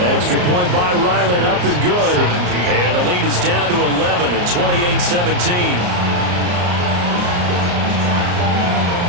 Extra point by Ryland, up and good. And the lead is down to 11 at 28-17.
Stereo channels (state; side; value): late; left; 34 ms